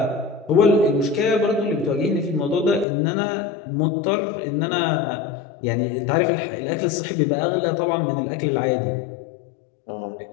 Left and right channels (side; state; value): right; drops out; at 2.9 s